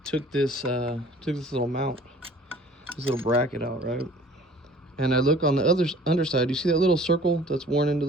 took this little mount, this little bracket out, right? And I look on the other underside. You see that little circle that's worn into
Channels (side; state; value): both; normal; correlation 0.50